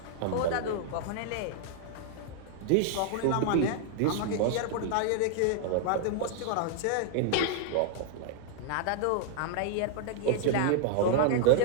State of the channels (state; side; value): different; both; correlation -0.01